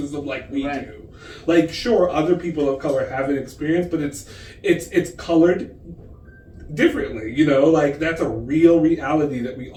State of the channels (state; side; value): identical; both; correlation 1.00